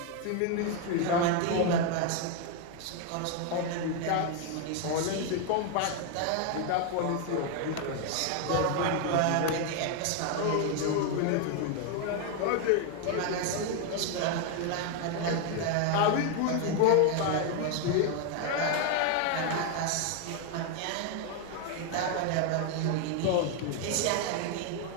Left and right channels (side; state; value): both; different; correlation 0.01